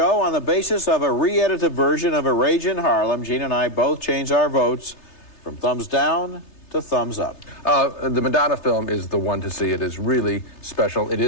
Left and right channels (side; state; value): right; late; 3.3 ms